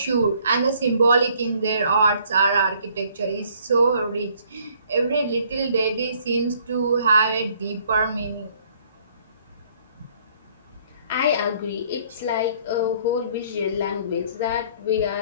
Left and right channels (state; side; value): inverted; both; correlation -0.62